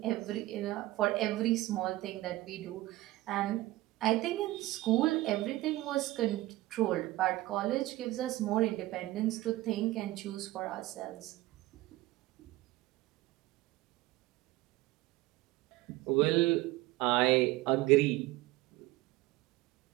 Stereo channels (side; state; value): left; quieter; 17.7 dB